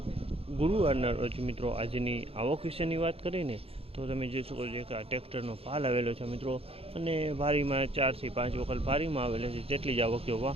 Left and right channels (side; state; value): left; late; 0.28 ms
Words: ગુરુવારના રોજ મિત્રો। આજની આવક વિશેની વાત કરીને તો તમે જોઈ શકો છો કે આ ટ્રેક્ટરનો પાલ આવેલો છે મિત્રો, અને ભારીમાં 4 થી 5 વખત ભારીમાં આવેલો છે, તેટલી જ આવક જોવા